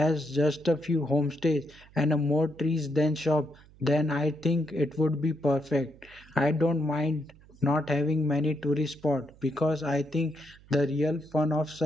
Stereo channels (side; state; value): right; noise; hum, 25 dB below the sound